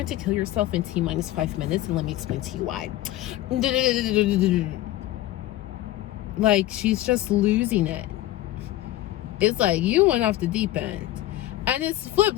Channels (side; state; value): right; quieter; 15.1 dB